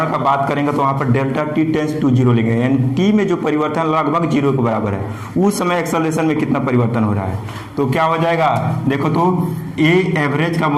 का बात करेंगे तो वहाँ पर delta t tends to zero लेंगे, यानी टी में जो परिवर्तन लगभग जीरो के बराबर है, उस समय एक्सेलरेशन में कितना परिवर्तन हो रहा है। तो क्या हो जाएगा, देखो तो ए एवरेज का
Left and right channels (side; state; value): both; identical; correlation 1.00